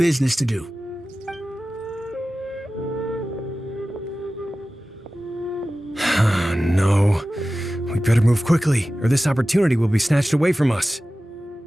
to do. No. We better move quickly, or this opportunity will be snatched away from us.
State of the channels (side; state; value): both; normal; correlation 0.95